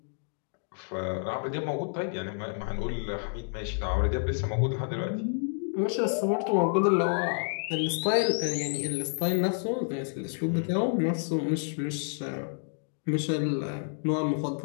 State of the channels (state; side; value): silent; right; digital silence